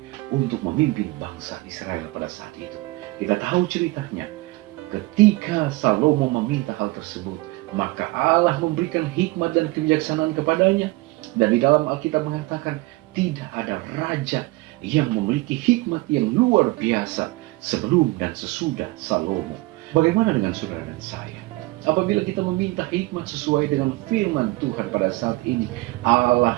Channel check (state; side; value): quieter; left; 21.7 dB